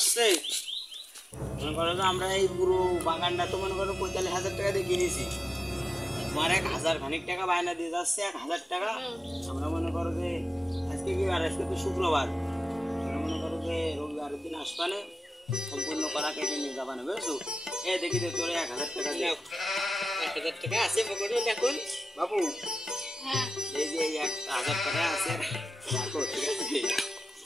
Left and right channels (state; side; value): normal; both; correlation 0.93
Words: মনে করো যে আমরা এই পুরো বাগানটা তো মনে করো 45,000 টাকা দিয়ে কিনেছি, তোমার 1,000 খানিক টাকা বায়না দিয়ে যাচ্ছে, 1,000 টাকা। আমরা মনে করো যে আজকে কি বার? আজকে তো শুক্রবার, আমরা মনে করো যে রবিবারের দিন আসবানে সম্পূর্ণ কলা কেটে নিয়ে যাবানে, বুঝছো? এ দেখি দে তোরে 1,000 টাকা দিয়ে। 1000 টাকা আছে পকেটে দেখুন। বাবু, হ্যাঁ এই যে এই 1,000 টাকা আছে, রাখো, ঠিক আছে?